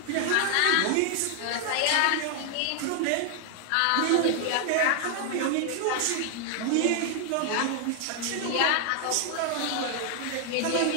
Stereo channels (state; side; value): different; both; correlation 0.00